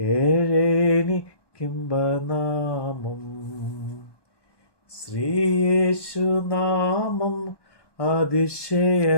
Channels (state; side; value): late; right; 1.2 ms